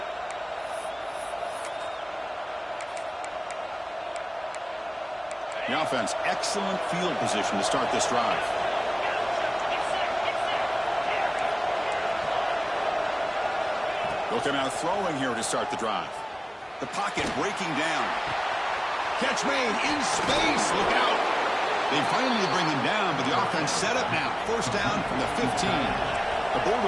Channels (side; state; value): both; identical; correlation 1.00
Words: The offense, excellent field position to start this drive. They'll come out throwing here to start the drive. The pocket breaking down. Catch made in space. Look out. They finally bring him down, but the offense set up now. First down from the 15. The